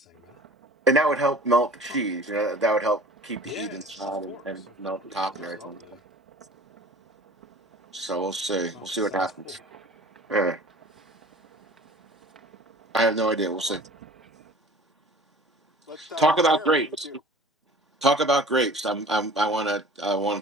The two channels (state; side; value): normal; both; correlation 0.45